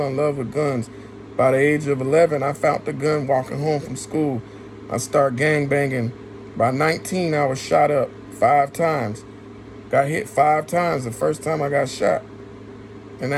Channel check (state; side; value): identical; both; correlation 1.00